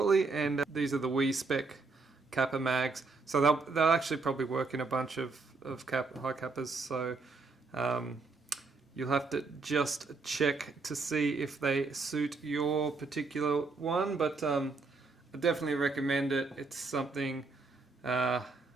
And these are the Wii spec Kappa mags, so they'll actually probably work in a bunch of high Kappas. So you'll have to just check to see if they suit your particular one. But I definitely recommend it. It's something I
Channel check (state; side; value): quieter; left; 4.0 dB